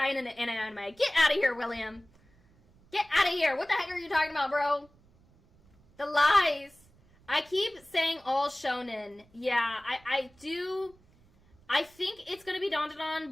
in an anime. Get out of here, William. Get out of here. What the heck are you talking about, bro? The lies. I keep saying all shonen. Yeah, I do. I think it's going to be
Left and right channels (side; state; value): right; noise; rumble, 30 dB below the sound